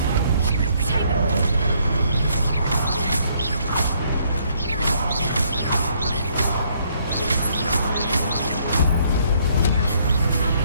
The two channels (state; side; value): inverted; both; correlation -0.68